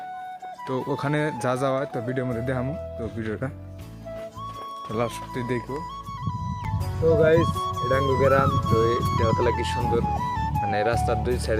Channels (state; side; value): identical; both; correlation 1.00